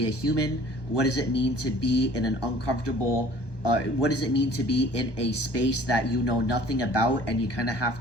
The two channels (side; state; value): right; late; 1.2 ms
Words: a human? What does it mean to be in an uncomfortable? What does it mean to be in a space that you know nothing about, and you kind of have